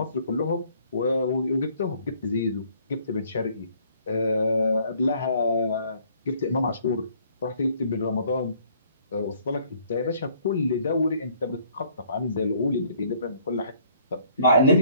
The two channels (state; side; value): inverted; both; correlation -0.61